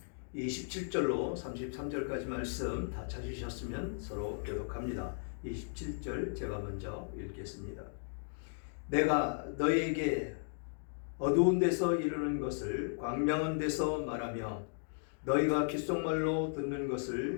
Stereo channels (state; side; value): silent; right; digital silence